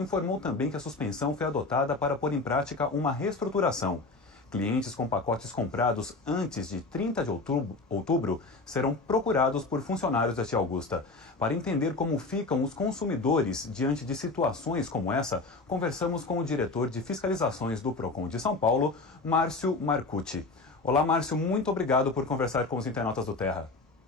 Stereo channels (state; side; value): quieter; right; 3.5 dB